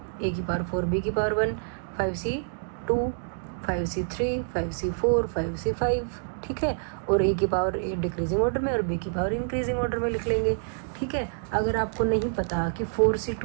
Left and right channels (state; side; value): silent; left; digital silence